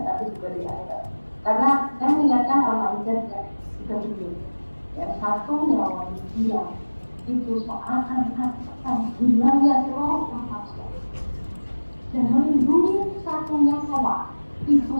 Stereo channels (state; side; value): inverted; both; correlation -1.00